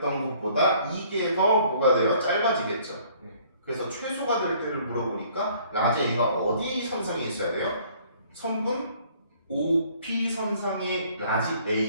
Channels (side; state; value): both; inverted; correlation -0.58